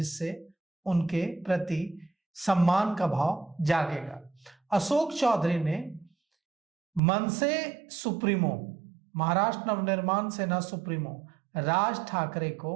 उनके प्रति सम्मान का भाव जागेगा। अशोक चौधरी ने मनसे सुप्रीमो, महाराष्ट्र नवनिर्माण सेना सुप्रीमो राज ठाकरे को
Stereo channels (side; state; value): left; drops out; at 7.0 s